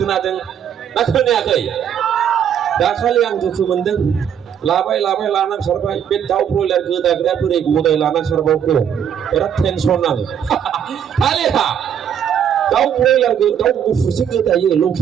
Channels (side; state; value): left; quieter; 8.7 dB